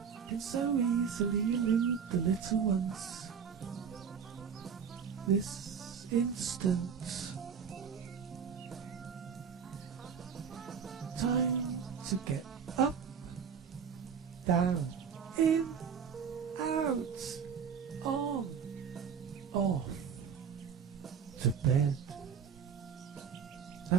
can so easily elude the little ones. This instant, time to get up, down, in, out, on, off, to bed.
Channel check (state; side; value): quieter; left; 7.0 dB